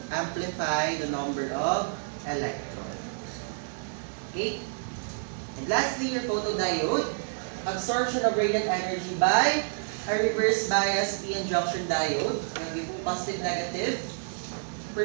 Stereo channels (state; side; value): silent; left; digital silence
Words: amplify the number of electrons. Okay? And lastly, your photodiode, absorption of radiant energy by a reverse bias p-n junction diode, positive negative,